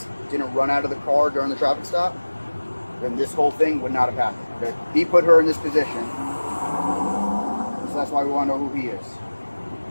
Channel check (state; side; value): inverted; both; correlation -1.00